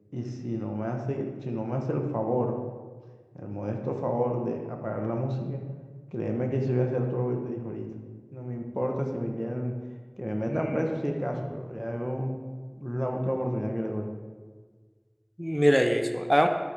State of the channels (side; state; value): both; identical; correlation 1.00